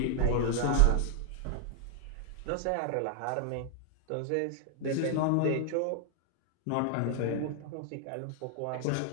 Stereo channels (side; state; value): both; different; correlation 0.00